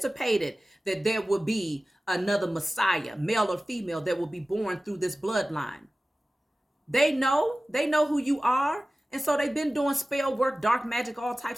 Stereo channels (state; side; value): normal; both; correlation 0.96